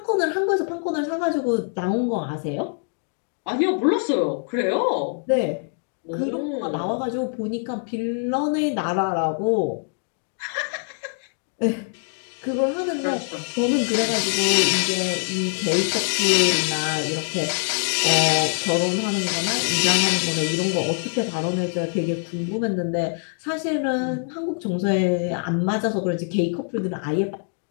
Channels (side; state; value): right; silent; 56 dB below the other